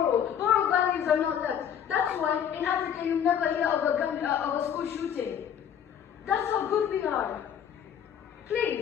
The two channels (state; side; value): quieter; right; 8.9 dB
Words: Moral values are not left. That's why in Africa you never hear of a school shooting. That's how good we are.